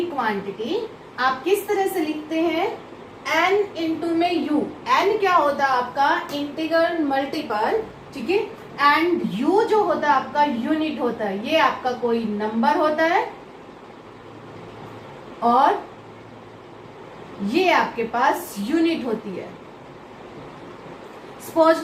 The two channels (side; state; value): both; identical; correlation 1.00